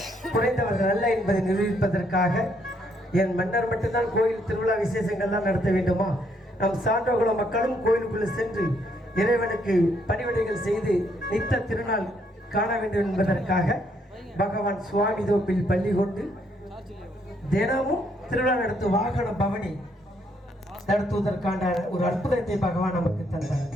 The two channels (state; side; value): normal; both; correlation 0.71